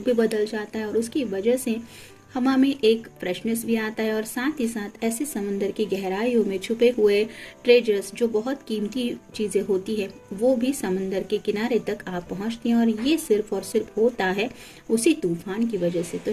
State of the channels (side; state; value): both; identical; correlation 1.00